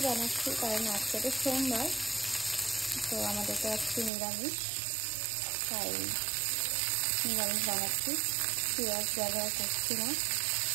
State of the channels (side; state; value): left; drops out; at 4.1 s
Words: বানাচ্ছি কারণ আজকে তো সোমবার, তো আমাদের তো আজকে নিরামিষ, তাই নিরামিষ বানাচ্ছি। পেঁয়াজ ব্যবহার করছি না।